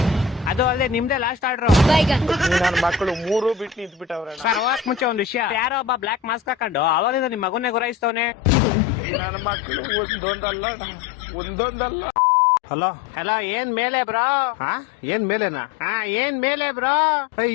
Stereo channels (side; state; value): right; drops out; at 8.1 s